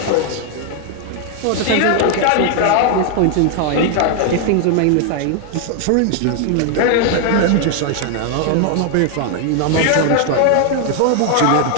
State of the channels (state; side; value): different; both; correlation 0.00